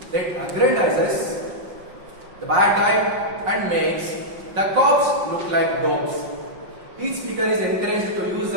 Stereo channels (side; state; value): left; late; 5.6 ms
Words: that aggrandizes the bad guy and makes the cops look like dogs. Each speaker is encouraged to use